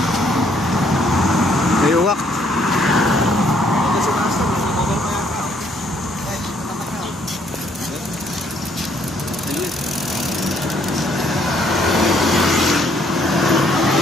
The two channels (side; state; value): both; normal; correlation 0.67